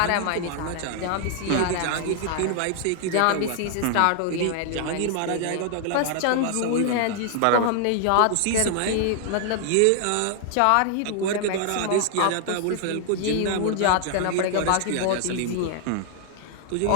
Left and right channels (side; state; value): both; different; correlation 0.00